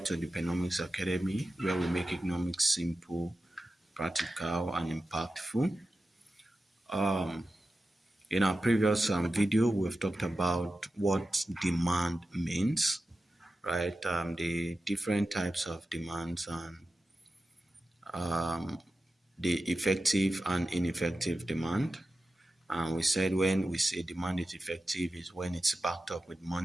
to the Dpenomics Academy, where we make economics simple, practical, and impactful. In our previous video, we've talked about what demand means, right? The different types of demands and the effective and ineffective demand. And we said when we say demand is effective is when it's backed up with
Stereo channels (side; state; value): both; normal; correlation 0.92